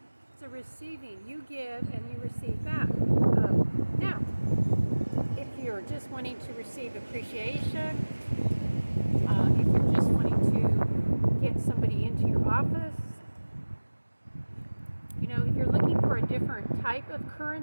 It's a receiving. You give and you receive back. Now, if you're just wanting to receive appreciation, if you're just wanting to get somebody into your office, if you're looking for a different type of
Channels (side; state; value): both; inverted; correlation -1.00